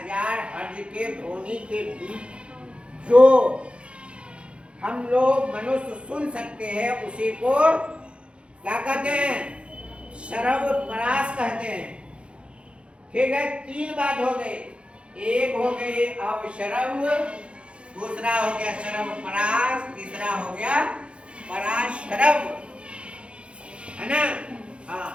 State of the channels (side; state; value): left; late; 0.058 ms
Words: हर्ट्ज के ध्वनि के बीच जो हम लोग मनुष्य सुन सकते हैं उसी को क्या कहते हैं, श्रव्य परास कहते हैं। ठीक है, 3 बात हो गई। एक हो गई अवश्रव्य, दूसरा हो गया श्रव्य परास, तीसरा हो गया पराश्रव्य, है ना। हाँ,